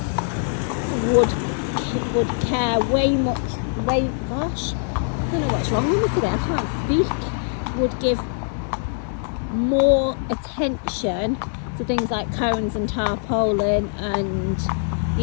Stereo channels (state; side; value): silent; right; digital silence